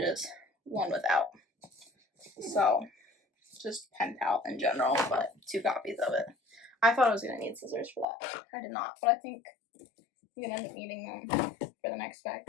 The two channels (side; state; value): right; drops out; at 8.1 s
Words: one without. So just Pen Pal in general, but 2 copies of it. I thought I was going to need scissors for that. I did not, but I think I'm going to end up needing them for the next